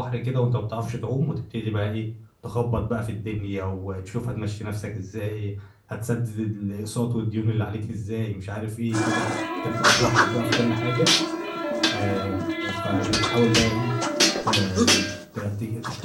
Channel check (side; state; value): both; identical; correlation 1.00